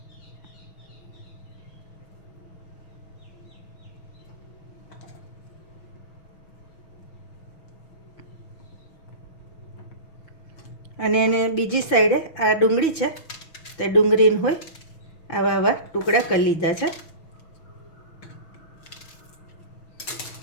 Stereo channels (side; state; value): right; late; 6.2 ms